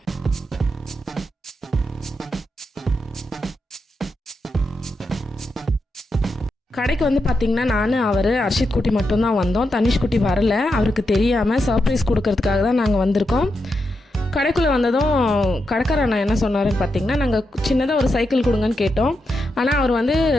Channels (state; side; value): normal; both; correlation 0.85